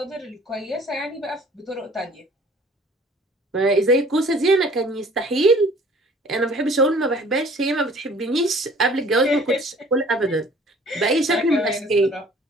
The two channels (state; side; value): normal; both; correlation 0.52